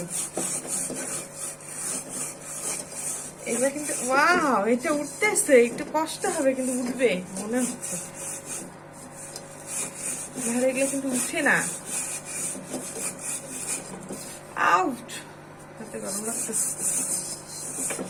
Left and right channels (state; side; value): identical; both; correlation 1.00